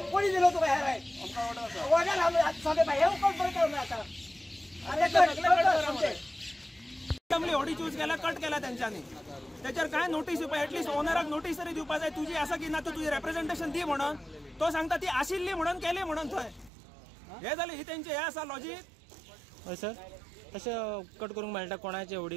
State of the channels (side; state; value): left; drops out; at 16.7 s